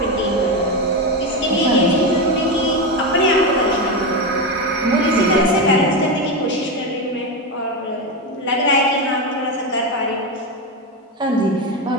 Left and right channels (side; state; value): both; normal; correlation 0.13